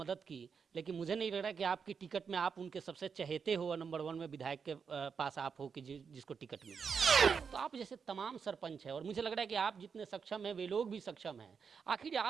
की, लेकिन मुझे नहीं लग रहा कि आपकी टिकट में आप उनके सबसे चहेते हो और नंबर 1 में विधायक के पास आप हो कि जिसको टिकट मिले। तो आप जैसे तमाम सरपंच है और मुझे लग रहा है कि आप जितने सक्षम हैं वे लोग भी सक्षम हैं। आखिर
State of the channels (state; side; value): quieter; left; 6.1 dB